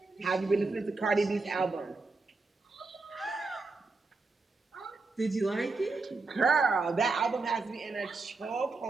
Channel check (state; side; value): quieter; left; 3.8 dB